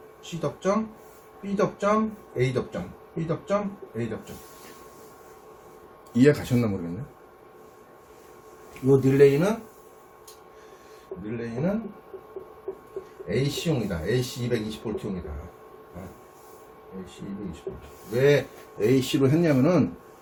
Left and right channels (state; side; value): identical; both; correlation 1.00